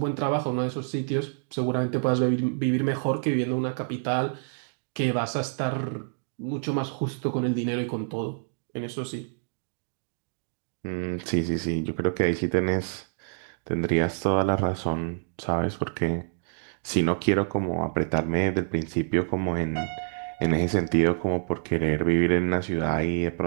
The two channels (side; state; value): left; silent; digital silence